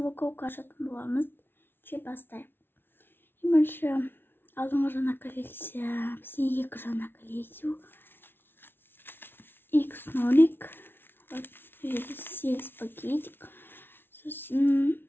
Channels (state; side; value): late; right; 0.11 ms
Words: ашатын боламыз. Бастайық. Бірінші алдыңғы жаңа коллекция, бізде екі жаңа коллекция. X0, вот, 8 пакетик. Сосын